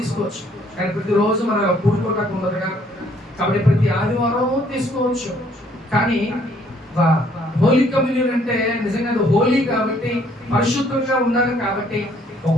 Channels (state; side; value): normal; both; correlation 0.64